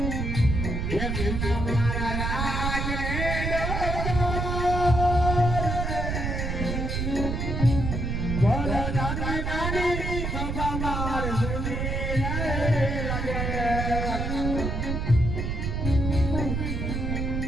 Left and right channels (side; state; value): right; noise; rumble, 1 dB below the sound